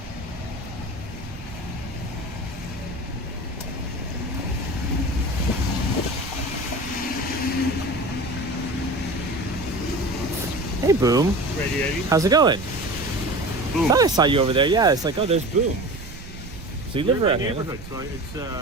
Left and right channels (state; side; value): noise; right; rumble, 15 dB below the sound